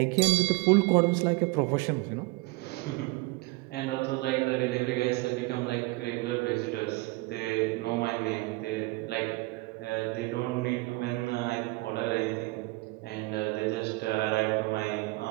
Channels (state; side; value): quieter; left; 23.6 dB